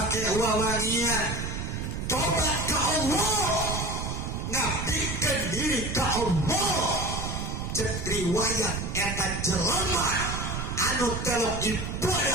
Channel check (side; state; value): right; noise; rumble, 4 dB below the sound